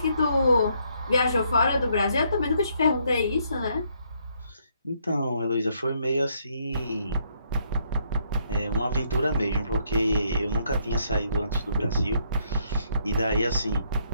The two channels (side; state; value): both; inverted; correlation -0.71